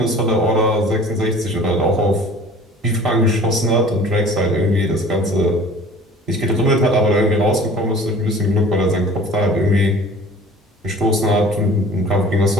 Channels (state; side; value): normal; both; correlation 0.46